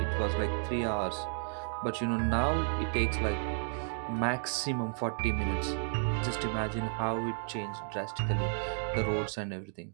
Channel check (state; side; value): silent; left; digital silence